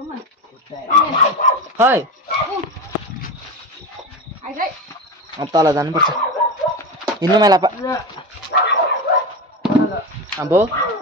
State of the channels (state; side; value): normal; both; correlation 0.22